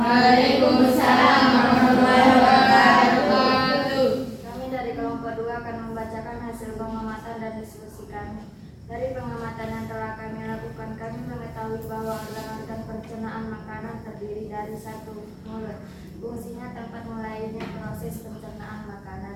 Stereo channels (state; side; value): identical; both; correlation 1.00